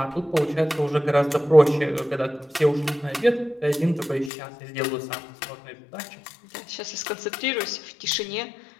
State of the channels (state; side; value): drops out; right; at 4.3 s